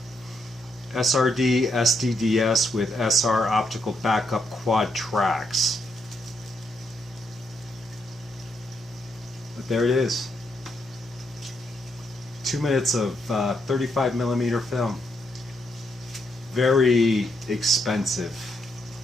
SRD SDDS with SR optical backup quad tracks. But there it is. 2 minutes of 35mm film. Very expensive.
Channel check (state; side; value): normal; both; correlation 0.78